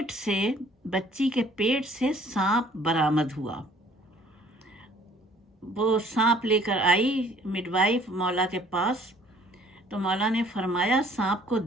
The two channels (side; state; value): both; normal; correlation 0.57